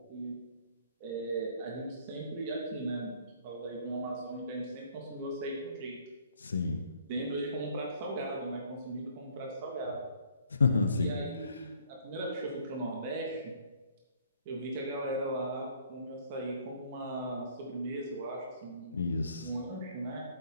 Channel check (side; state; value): both; inverted; correlation -0.59